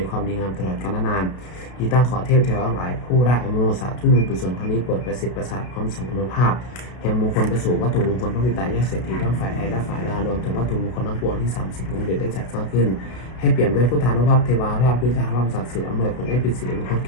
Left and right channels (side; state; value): right; late; 32 ms